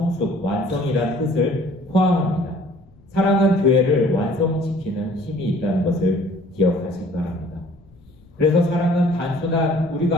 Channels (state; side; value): noise; left; rumble, 27 dB below the sound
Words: 완성이라는 뜻을 포함합니다. 사랑은 교회를 완성시키는 힘이 있다는 것을 기억하시기 바랍니다. 그래서 사랑은 단순한